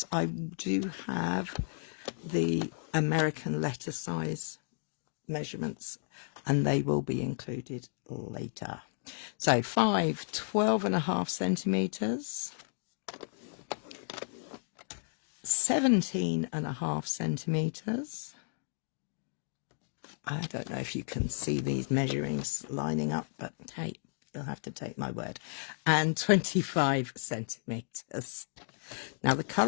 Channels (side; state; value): right; silent; digital silence